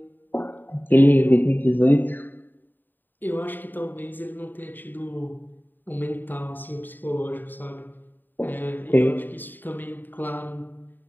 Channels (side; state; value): right; late; 0.091 ms